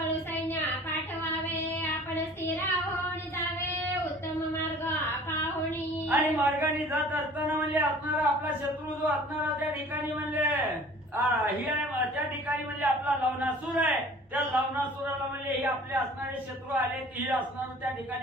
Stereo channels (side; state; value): both; normal; correlation 0.48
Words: सैन्य पाठवावे आपण स्थिर होऊन जावे उत्तम मार्ग पाहुणी। आणि मार्गाने जात असताना म्हणजे असणारा आपला शत्रू जो असणारा त्या ठिकाणी म्हणजे ही आहे त्या ठिकाणी म्हणजे आपला लवणासूर आहे, त्या लवणासुराला म्हणजे हे आपले असणारे शत्रू आले ही असणार त्या